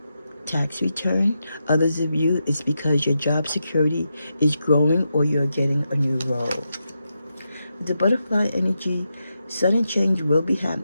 tax return. Others of you, it's because your job security is growing or you're getting a new role. The butterfly energy, sudden change will be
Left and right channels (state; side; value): inverted; both; correlation -0.87